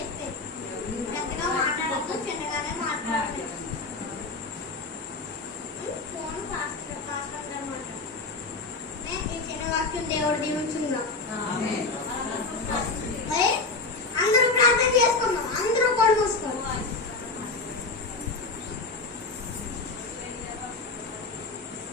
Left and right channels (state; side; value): quieter; right; 3.7 dB